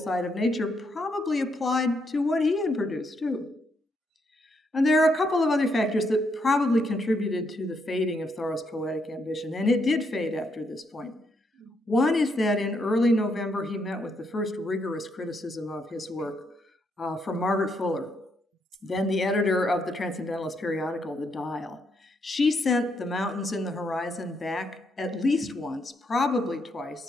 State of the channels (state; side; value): normal; both; correlation 0.77